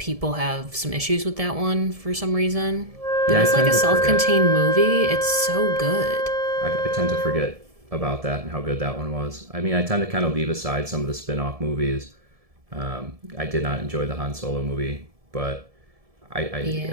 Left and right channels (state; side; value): late; left; 1.7 ms